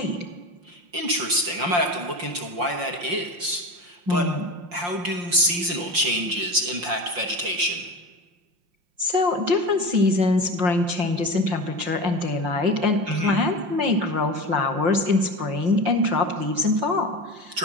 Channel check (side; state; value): left; late; 5.7 ms